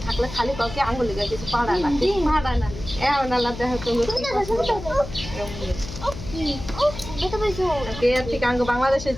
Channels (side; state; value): left; noise; hum, 11 dB below the sound